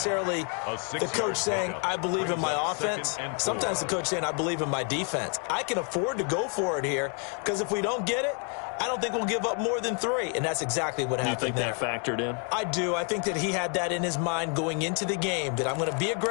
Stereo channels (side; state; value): right; quieter; 39.3 dB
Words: the coach saying, I believe in my offense. Sometimes the coach saying, I believe in my defense. I can afford to go for it here, because if we don't get it, I don't think we'll give up more than 3, and that's exactly what happened there. You think that factored in? I do. I think that he had that in his mind going into the game, that I'm going to be